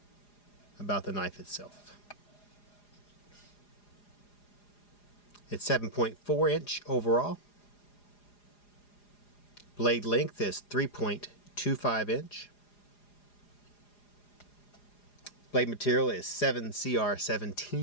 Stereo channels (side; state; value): right; late; 4.9 ms